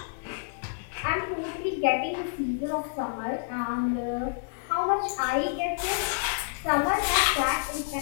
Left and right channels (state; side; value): silent; right; digital silence